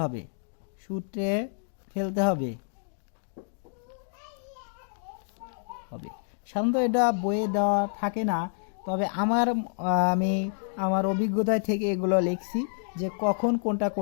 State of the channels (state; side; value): silent; right; digital silence